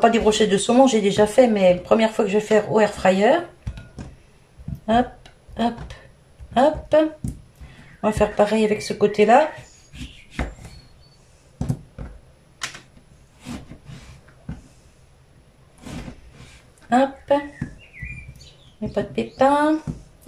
des brochettes de saumon, j'ai déjà fait, mais première fois que je vais faire au air fryer. Hop, hop, hop. On va faire pareil avec ce côté-là. Hop. Il n'y a pas de pépins.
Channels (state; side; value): identical; both; correlation 1.00